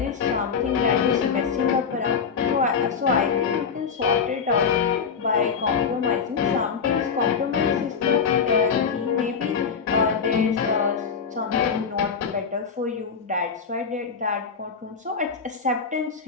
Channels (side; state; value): right; quieter; 6.1 dB